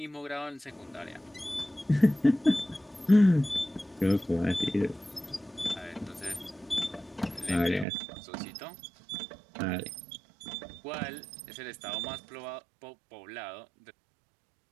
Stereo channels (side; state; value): left; drops out; at 7.9 s